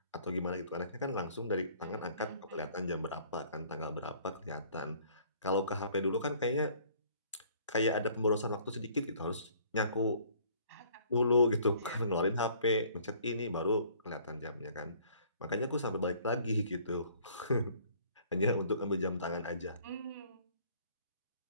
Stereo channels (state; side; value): inverted; both; correlation -0.57